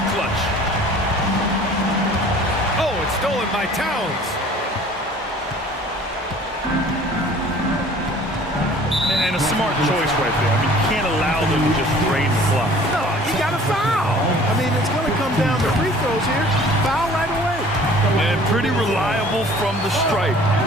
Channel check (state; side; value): normal; both; correlation 0.50